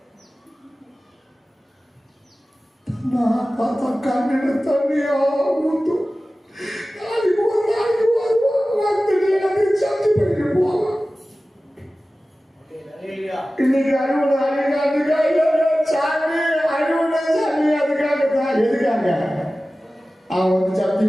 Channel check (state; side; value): normal; both; correlation 0.96